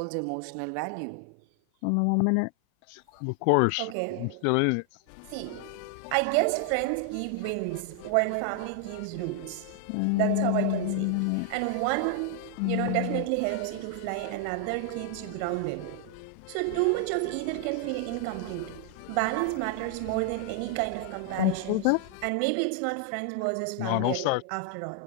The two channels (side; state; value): both; different; correlation 0.00